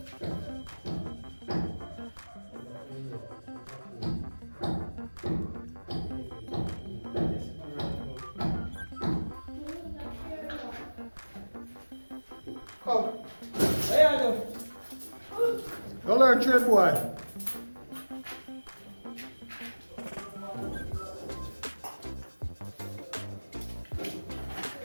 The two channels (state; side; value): inverted; both; correlation -1.00